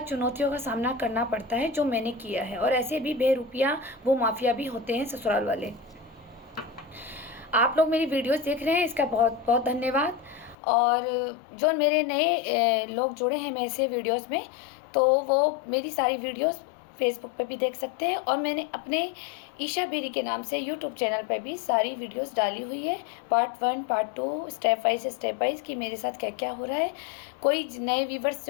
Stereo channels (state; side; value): drops out; right; at 10.6 s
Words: का सामना करना पड़ता है जो मैंने किया है। और ऐसे भी बेरुपया वो माफिया भी होते हैं ससुराल वाले। आप लोग मेरी वीडियोस देख रहे हैं, इसका बहुत बहुत धन्यवाद। और जो मेरे नए लोग जुड़े हैं मेरे से वीडियोस में, तो वो मेरी सारी वीडियोस फेसबुक पे भी देख सकते हैं। और मैंने अपने ईशा बेरी के नाम से यूट्यूब चैनल पर भी सारी वीडियोस डाली हुई है, पार्ट 1 पार्ट 2 स्टेप वाइज कि मेरे साथ क्या क्या हो रहा है। कोई नए व्यूवर्स